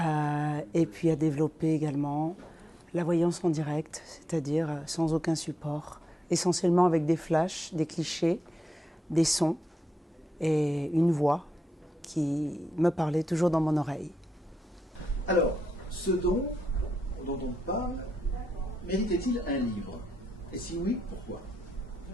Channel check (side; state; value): both; normal; correlation 0.85